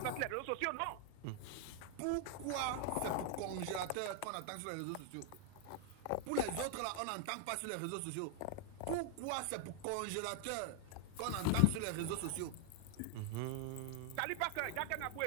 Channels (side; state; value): both; different; correlation 0.00